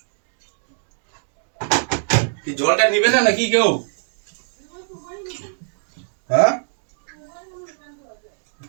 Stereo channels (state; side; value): silent; left; 63 dB below the other